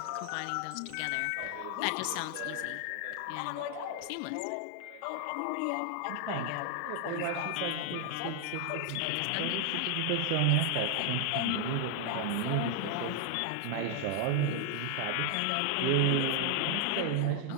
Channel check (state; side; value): different; both; correlation 0.00